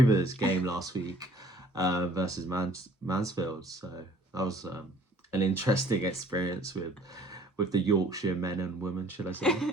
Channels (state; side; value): normal; both; correlation 0.56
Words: game last week versus Mansfield. So that was an interesting experience with the Yorkshire men and women, should I say?